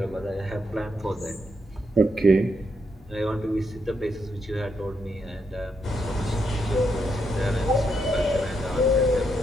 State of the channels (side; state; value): both; normal; correlation 0.79